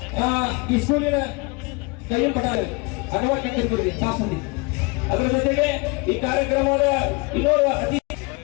ಈ ಸ್ಕೂಲಿನ ಕೈಯ ಪಟಾಲ ಅನವಕ್ಕೆ ತಾಸಂದಿ ಅದರ ಜೊತೆಗೆ ಈ ಕಾರ್ಯಕ್ರಮದ ಇನ್ನೋರ್ವ ಅತಿಥಿ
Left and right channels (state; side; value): quieter; right; 28.0 dB